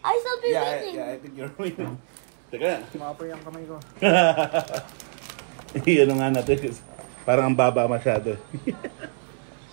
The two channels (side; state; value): left; silent; 62 dB below the other